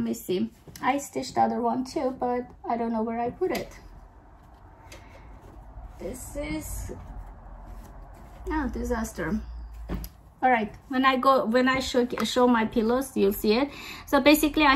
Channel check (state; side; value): identical; both; correlation 1.00